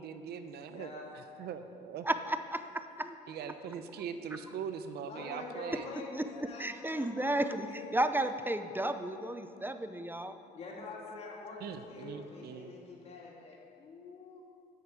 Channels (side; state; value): both; normal; correlation 0.65